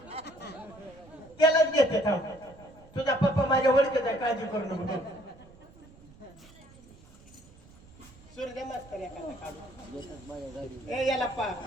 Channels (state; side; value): noise; right; rumble, 23 dB below the sound